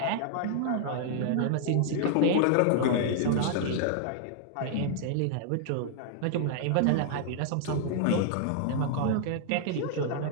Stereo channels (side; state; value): both; different; correlation -0.01